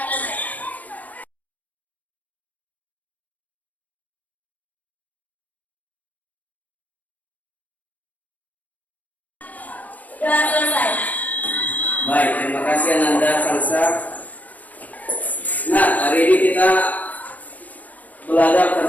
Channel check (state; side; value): late; right; 0.077 ms